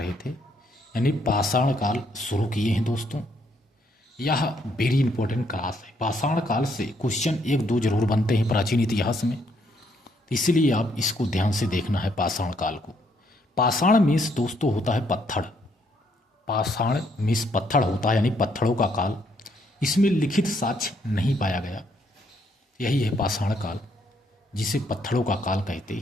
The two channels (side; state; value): both; normal; correlation 0.71